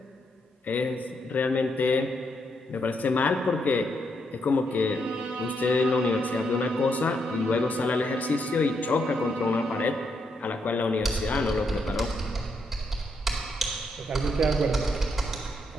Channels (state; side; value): normal; both; correlation 0.78